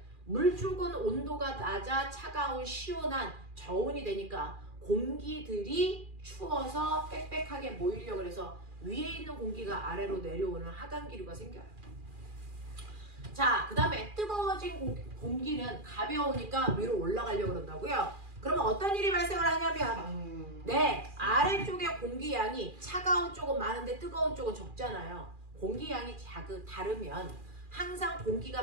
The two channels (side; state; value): left; late; 2.4 ms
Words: 물쪽은 온도가 낮아 차가운 시원한 저온이 되니까 공기들이 추워서 빽빽하게 모이려고 해서 위에 있는 공기가 아래로 내려오는 하강기류가 생겨요. 자, 그 다음에 뜨거워진 공기는 가벼우니까 위로 올라가려고 그런다고요. 그러면 어떤 일이 발생을 하냐면 네, 아래쪽의 공기양이 차가운 쪽은 많은데 뜨거운 쪽은 적잖아요. 공기양이 다르면 항상 공기가